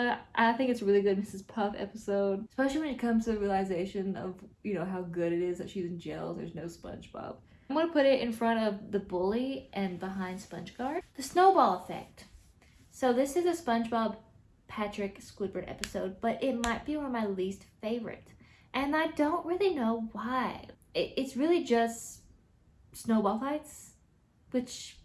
I think it's a really good Mrs. Puff episode, especially when it comes to the realization of, you know, how good it is that she's in jail. There's no SpongeBob. I'm gonna put it in front of the bully and behind Spongegaurd. The Snowball Effect. So this is a SpongeBob Patrick Squidward episode, but it might be one of my least favorite. And I don't really know why. It's really just snowball fights,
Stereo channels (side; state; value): both; identical; correlation 1.00